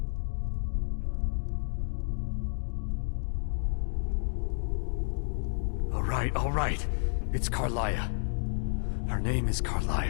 All right. It's Carlia. Her name is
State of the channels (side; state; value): right; silent; digital silence